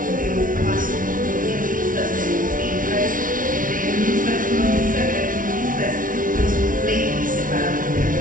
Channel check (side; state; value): left; late; 0.39 ms